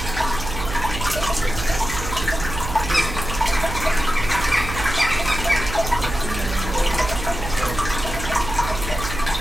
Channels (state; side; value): noise; right; hum, 7 dB below the sound